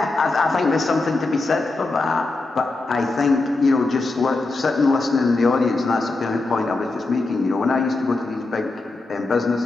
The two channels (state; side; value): quieter; right; 3.3 dB